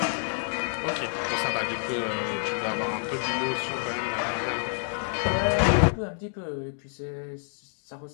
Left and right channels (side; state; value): right; silent; 59 dB below the other